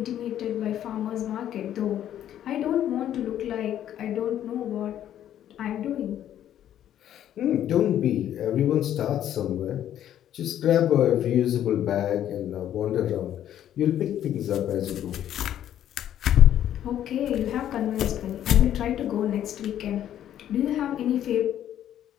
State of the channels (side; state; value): right; quieter; 11.1 dB